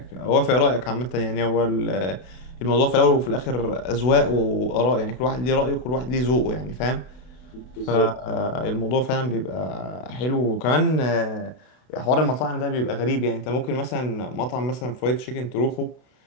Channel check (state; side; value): late; right; 32 ms